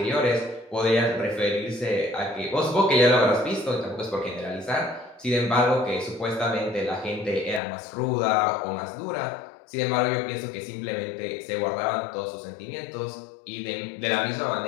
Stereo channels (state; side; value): drops out; right; at 7.6 s